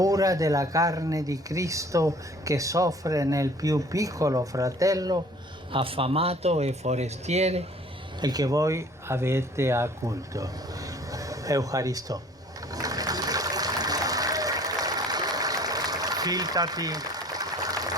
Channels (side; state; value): both; normal; correlation 0.51